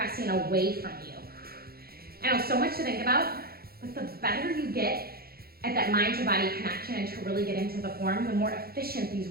away from you. I know, so much to think about, but the better you get at that mind to body connection and to really get into the form, the more efficient these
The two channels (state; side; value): late; left; 0.44 ms